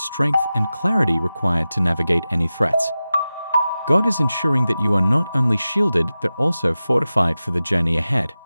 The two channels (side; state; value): both; inverted; correlation -0.95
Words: and clarity required to navigate any threats. God is ensuring that you are not only shielded but also fortified for the journey ahead.